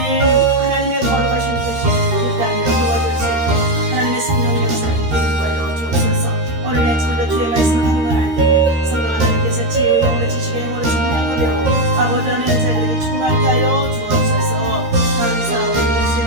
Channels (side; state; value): left; late; 13 ms